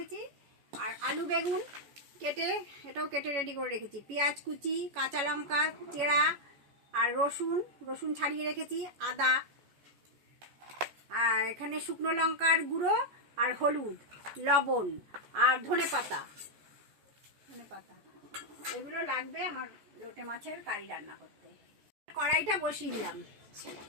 আর আলু বেগুন কেটে এটাও কেটে রেডি করে রেখেছি। পেঁয়াজ কুচি, কাঁচা লঙ্কা চেরা, আর রসুন ছাড়িয়ে রেখেছি, আদা, আর এখানে শুকনো লঙ্কার গুঁড়ো আর হলুদ, লবণ আর ধনে পাতা এগুলো লাগবে আমার লোটে মাছের কারি রান্না করতে। কড়াইটা বসিয়ে দিলাম,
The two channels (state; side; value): late; left; 14 ms